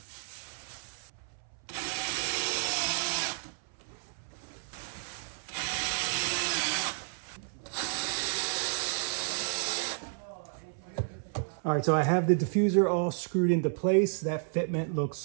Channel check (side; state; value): left; silent; 57 dB below the other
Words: All right, so I have the diffuser all screwed into place. That fitment looks